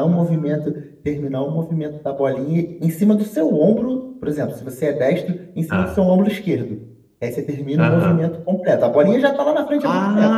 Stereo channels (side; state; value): both; identical; correlation 1.00